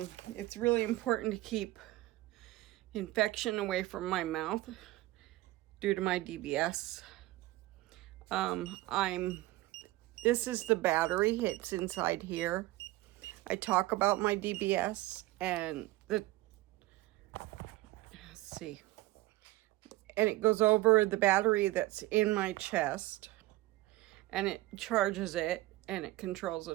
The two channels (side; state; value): left; quieter; 18.3 dB